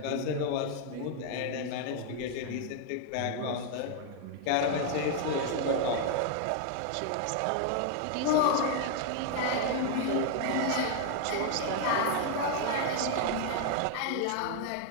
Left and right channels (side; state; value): both; different; correlation 0.00